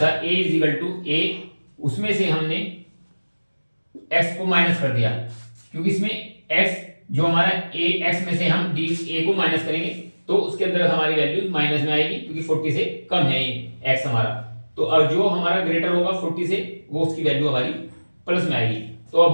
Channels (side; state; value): both; inverted; correlation -1.00